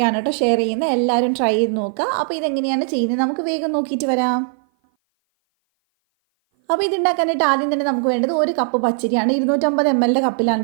കേട്ടോ ഷെയർ ചെയ്യുന്നത്. എല്ലാവരും ട്രൈ ചെയ്ത് നോക്കുക. അപ്പോൾ ഇതെങ്ങനെയാണ് ചെയ്യുന്നത് നമുക്ക് വേഗം നോക്കിയിട്ട് വരാം. അപ്പോൾ ഇതുണ്ടാക്കാനായിട്ട് ആദ്യം തന്നെ നമുക്ക് വേണ്ടത് 1 കപ്പ് പച്ചരിയാണ്. 250 ml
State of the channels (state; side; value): silent; left; 57 dB below the other